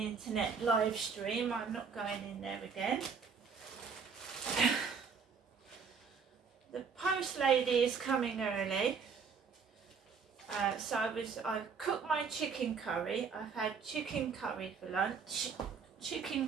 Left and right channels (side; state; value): left; quieter; 5.8 dB